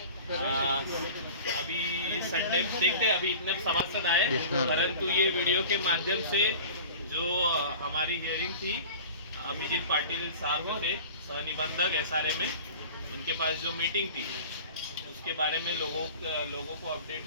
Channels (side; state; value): both; inverted; correlation -0.39